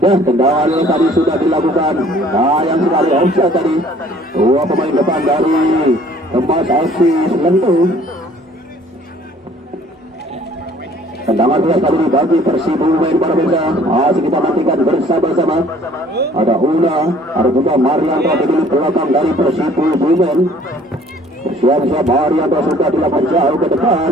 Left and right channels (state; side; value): normal; both; correlation 0.55